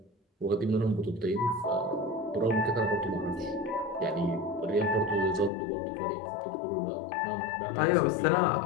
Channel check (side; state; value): right; drops out; at 5.5 s